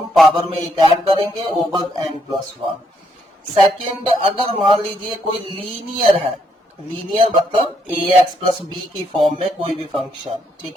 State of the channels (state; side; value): normal; both; correlation 0.74